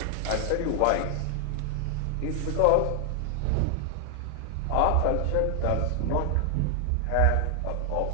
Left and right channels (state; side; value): different; both; correlation 0.00